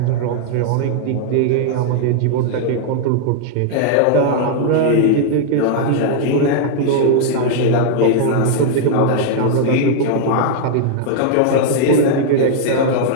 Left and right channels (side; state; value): both; different; correlation -0.01